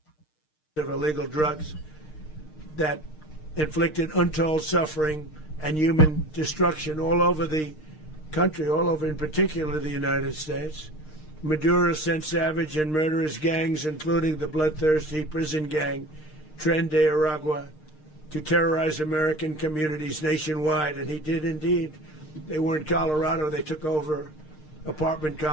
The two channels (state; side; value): late; right; 6.5 ms